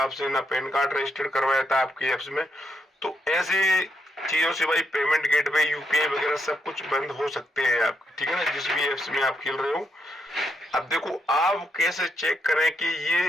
आपसे, ना पैन कार्ड रजिस्टर्ड करवाया था आपके एप्स में। तो ऐसे चीजों से भाई पेमेंट गेटवे, यूपीआई वगैरह सब कुछ बंद हो सकते हैं आपके। ठीक है ना, जिस भी एप्स में आप खेल रहे हो। अब देखो, आप कैसे चेक करें कि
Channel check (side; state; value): both; normal; correlation 0.79